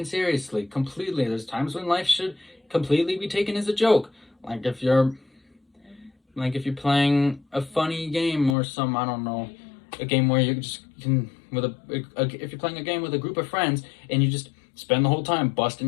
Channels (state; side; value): drops out; right; at 8.6 s